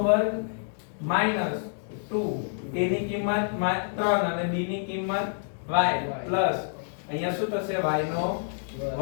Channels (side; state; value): right; silent; digital silence